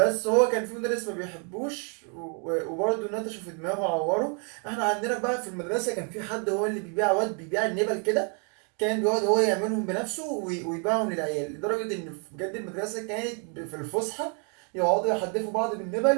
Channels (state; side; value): quieter; left; 38.5 dB